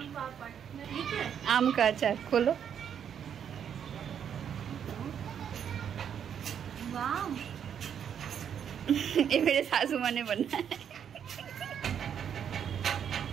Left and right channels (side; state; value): left; quieter; 8.4 dB